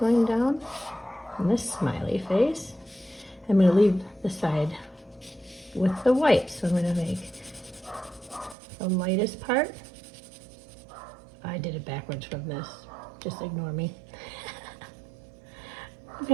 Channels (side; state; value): left; drops out; at 8.6 s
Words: down and this smiley face. I'm gonna leave the side with the white. So I'm gonna make the lightest part. I did it backwards from this, just ignore me.